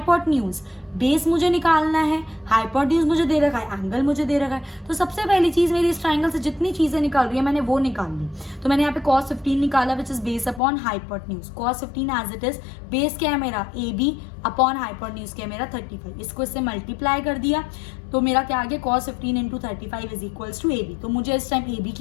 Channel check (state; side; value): drops out; right; at 10.6 s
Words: बेस मुझे निकालना है, हाइपोटेन्यूज मुझे दे रखा है, एंगल मुझे दे रखा है। तो सबसे पहली चीज मेरी इस ट्राइंगल से जितनी चीजें निकल रही है मैंने वो निकाल ली। तो मैंने यहाँ पे cos 15 निकाला which is base upon hypotenuse. cos 15 as it is, base क्या है मेरा? AB अपॉन हाइपोटेन्यूज क्या है मेरा? 35। इसको इससे मल्टीप्लाई कर दिया तो मेरा क्या आ गया? cos 15 into 35 is equals to AB। तो मुझे इस टाइम AB